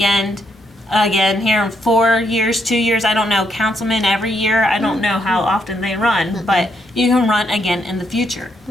here in 4 years, 2 years, I don't know, councilman every year. I don't know how often they run, but you can run again in the future.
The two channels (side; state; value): both; normal; correlation 0.76